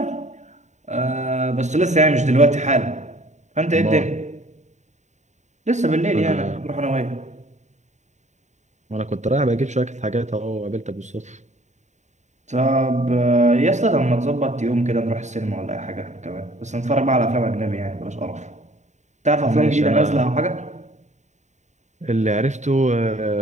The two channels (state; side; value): late; left; 0.34 ms